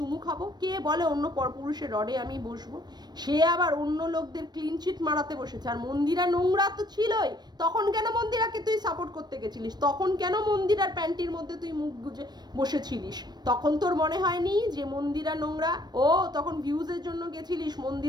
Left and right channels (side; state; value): left; late; 0.20 ms